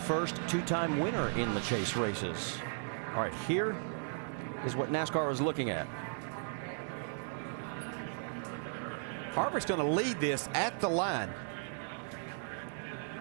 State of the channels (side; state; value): left; silent; 54 dB below the other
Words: 2-time winner in the chase races. All right, here is what NASCAR is looking at. Harvick's going to lead this at the line.